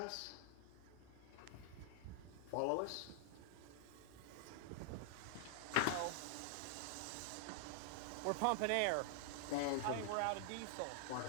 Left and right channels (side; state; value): both; different; correlation -0.01